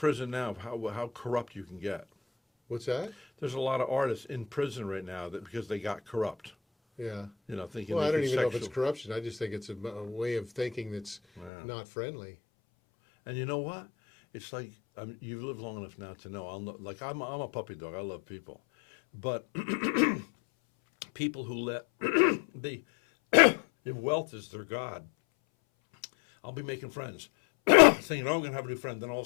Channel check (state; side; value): drops out; right; at 11.5 s